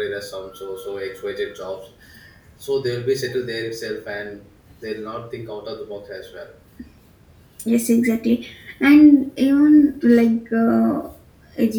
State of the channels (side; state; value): both; identical; correlation 1.00